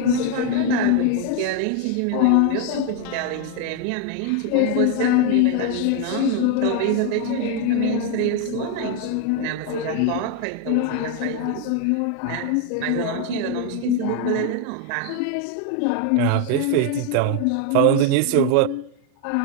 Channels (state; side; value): different; both; correlation 0.01